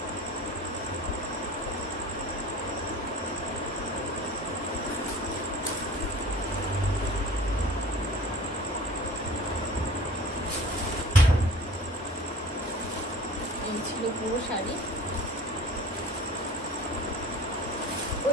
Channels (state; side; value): normal; both; correlation 0.42